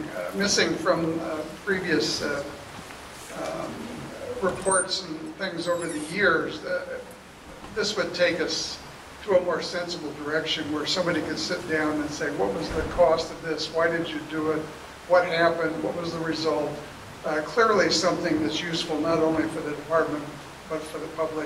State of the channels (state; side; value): identical; both; correlation 1.00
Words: from previous reports and things over the years. This would take us to a more sensible direction where somebody could sit down and say, what was the cost of this? Why did you do it? What happened? What was the result? Clearly something that's useful not only for the department, but for the